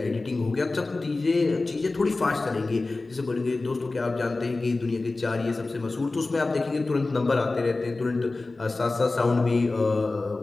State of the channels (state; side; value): quieter; right; 3.3 dB